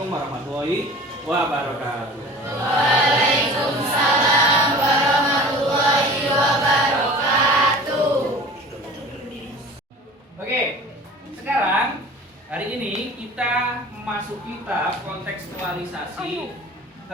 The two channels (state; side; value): normal; both; correlation 0.41